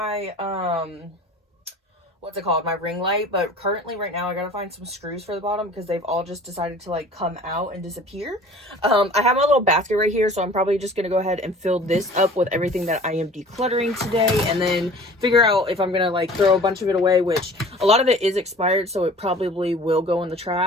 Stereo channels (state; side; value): normal; both; correlation 0.45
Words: what's it called, my ring light, but currently right now I gotta find some screws for the bottom because they've all just decided to like come out and disappear. I have my little basket right here, so I'm probably just gonna go ahead and fill this up with everything that I am decluttering today, and then figure out if I'm gonna like throw a bunch of it away, which a lot of it is expired, so it probably will go in the